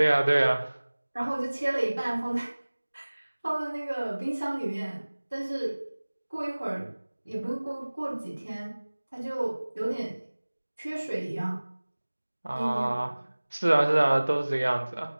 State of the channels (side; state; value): both; inverted; correlation -1.00